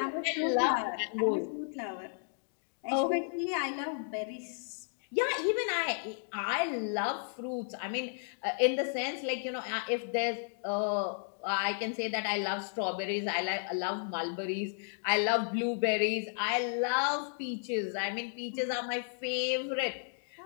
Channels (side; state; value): right; silent; digital silence